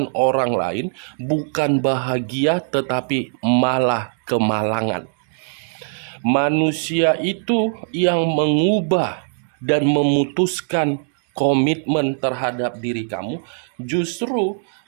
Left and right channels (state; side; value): silent; left; digital silence